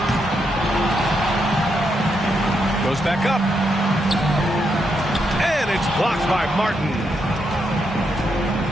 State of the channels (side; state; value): both; normal; correlation 0.80